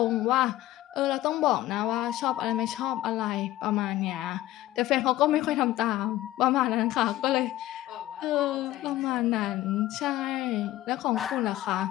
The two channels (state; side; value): quieter; right; 15.4 dB